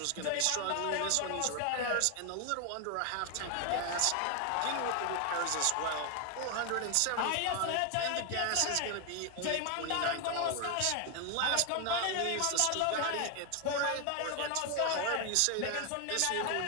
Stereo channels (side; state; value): both; different; correlation 0.01